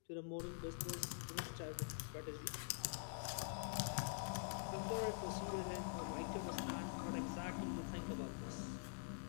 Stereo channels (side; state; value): right; silent; digital silence